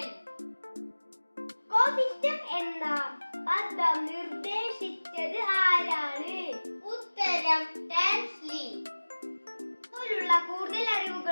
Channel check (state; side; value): inverted; both; correlation -1.00